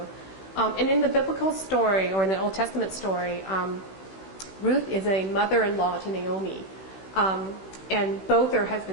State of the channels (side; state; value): right; late; 16 ms